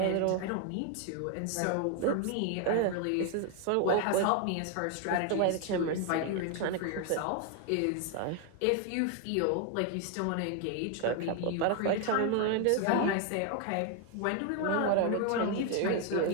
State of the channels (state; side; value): different; both; correlation 0.01